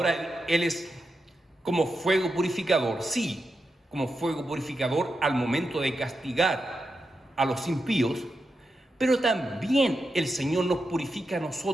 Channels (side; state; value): both; normal; correlation 0.87